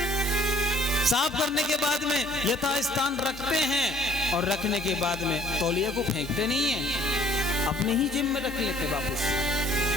साफ करने के बाद में यथास्थान रखते हैं, और रखने के बाद में तौलिया को फेंकते नहीं है, अपने ही जेब में रख लेते वापस।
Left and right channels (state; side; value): normal; both; correlation 0.56